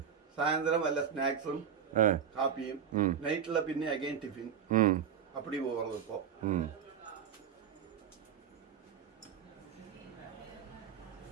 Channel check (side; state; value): left; quieter; 7.9 dB